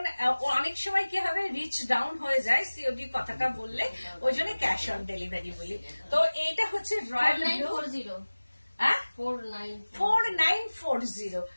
অনেক সময় কি হবে, রিচ ডাউন হয়ে যায় সিওডি কথাটা বললে, ওই জন্য ক্যাশ অন ডেলিভারি বলি। তো এইটা হচ্ছে রয়্যাল ব্লু। 4940।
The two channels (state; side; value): inverted; both; correlation -1.00